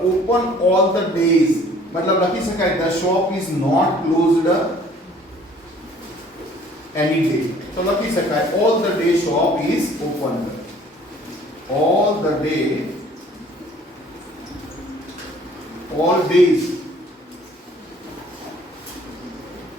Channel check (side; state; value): both; normal; correlation 0.55